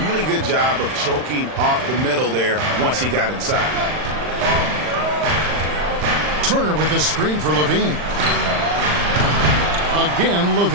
really good job of choking off the middle there once he got inside. Turner with a screen for LaVine. Again,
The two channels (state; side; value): late; left; 39 ms